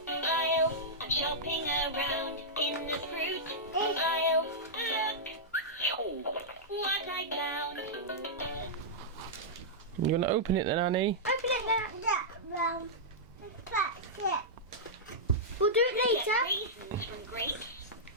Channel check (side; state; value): both; normal; correlation -0.11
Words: aisle. I'm shopping around in the fruit aisle. Look what I found. You gonna open it then, Annie? Open it there. That's it. We'll do it later. Get raisins from grapes.